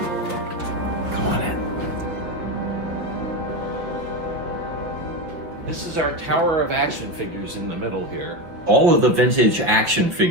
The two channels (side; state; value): left; late; 5.4 ms